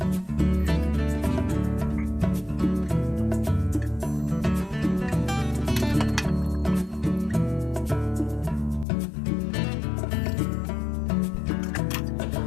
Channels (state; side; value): drops out; right; at 8.8 s